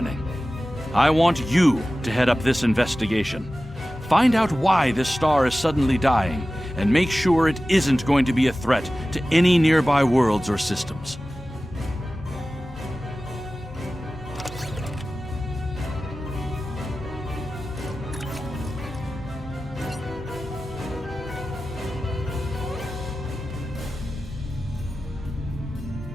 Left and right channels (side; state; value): both; normal; correlation 0.96